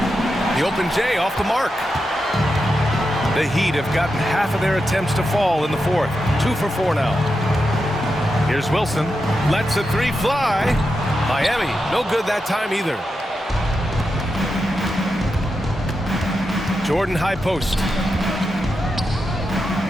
The open J off the mark. The Heat have gotten half of their attempts to fall in the fourth. 2 for 4 now. Here's Wilson. Lets a three fly. Miami, no good that time either. Jordan high post.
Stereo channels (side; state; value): both; normal; correlation 0.88